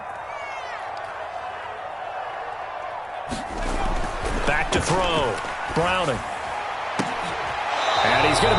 Back to throw. Browning. And he's going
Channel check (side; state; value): both; identical; correlation 1.00